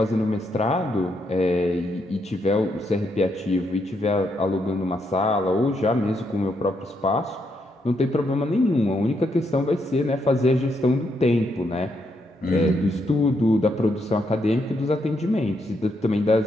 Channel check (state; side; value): normal; both; correlation 0.78